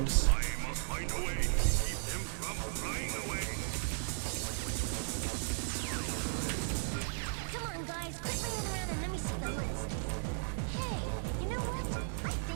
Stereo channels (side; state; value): left; silent; 54 dB below the other